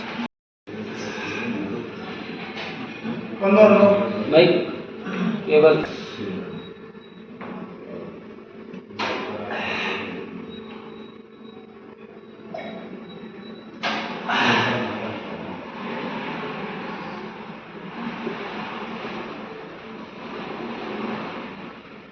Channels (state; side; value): identical; both; correlation 1.00